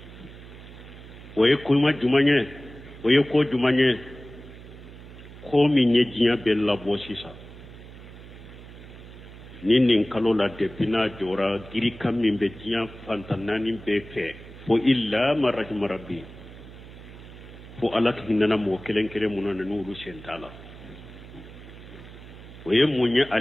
oye kuma jumanye oye ko jumanye ko minye jinya bella bosisa nin kalo la depina jora giri kam min be jinya fantanani be fe fo illa marahim rabbi fo alak hinana mo kelen kelen munana nuru sentala oye munya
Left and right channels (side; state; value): right; noise; hum, 17 dB below the sound